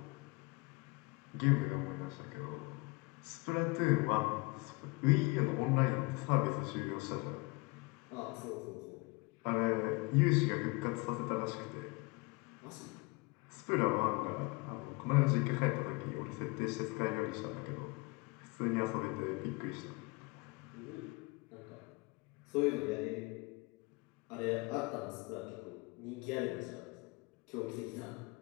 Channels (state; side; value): quieter; right; 26.6 dB